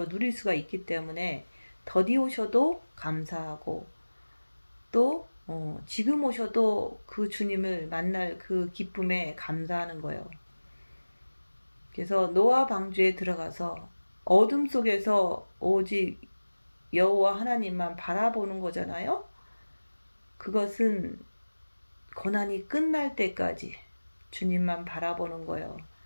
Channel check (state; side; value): inverted; both; correlation -1.00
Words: 누릴 수가 있기 때문에 더디 오셔도 감사하고 또 지금 오셔도 그 주님을 만날 그 기쁨에 감사하는 거예요. 그래서 노아 방주에 들어가서 어둠 속에서 오직 여호와 하나님만 바라보는 거잖아요. 그것은 고난이 끝날 때까지 주님만 바라보는 거예요.